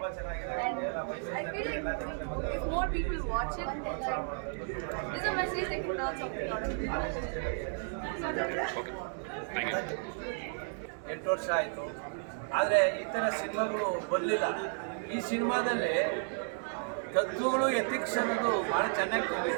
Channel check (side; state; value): left; silent; 56 dB below the other